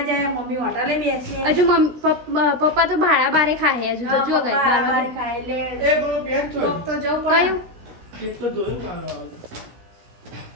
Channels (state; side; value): late; left; 17 ms